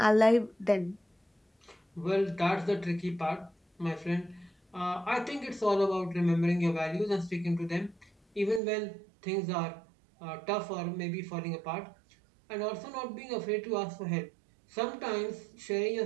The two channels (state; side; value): drops out; left; at 8.6 s